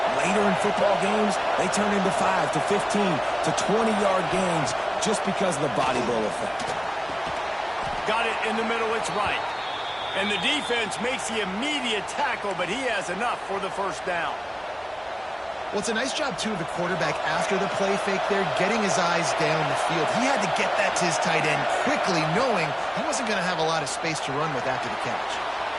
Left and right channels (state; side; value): identical; both; correlation 1.00